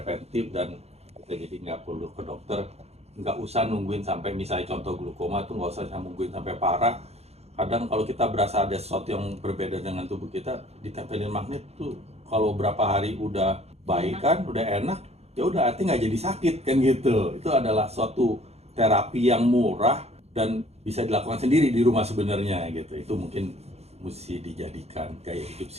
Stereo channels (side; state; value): left; late; 0.30 ms